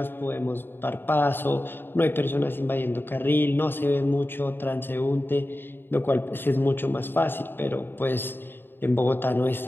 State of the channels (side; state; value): right; late; 0.099 ms